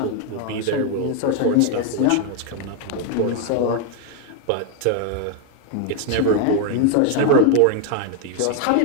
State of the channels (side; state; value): both; different; correlation 0.00